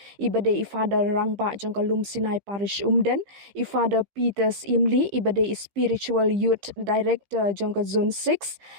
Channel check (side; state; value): left; late; 15 ms